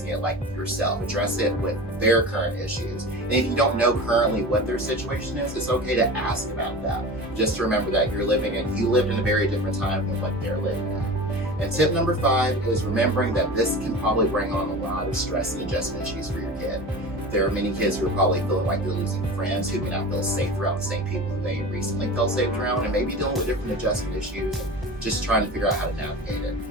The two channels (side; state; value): both; normal; correlation 0.33